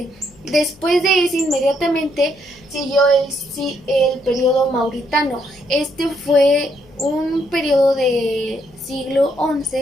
Después de ese, inmediatamente siguió el periodo mauritano. Este fue un periodo de siglo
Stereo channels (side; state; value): left; noise; hum, 27 dB below the sound